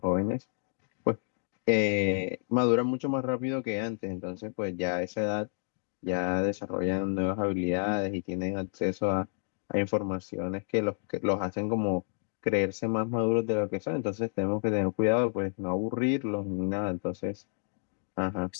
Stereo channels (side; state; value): right; silent; digital silence